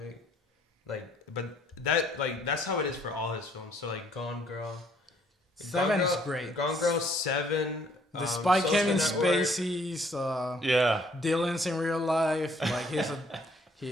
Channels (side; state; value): both; normal; correlation 0.63